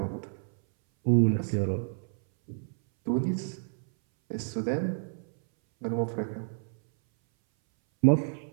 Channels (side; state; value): left; silent; 58 dB below the other